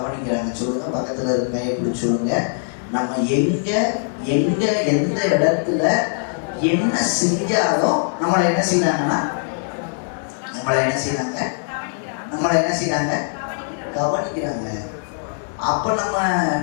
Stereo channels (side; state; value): right; silent; digital silence